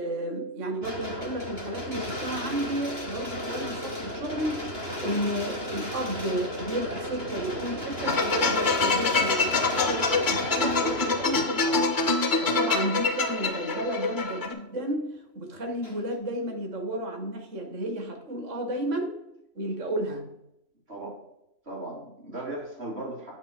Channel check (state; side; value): late; left; 3.0 ms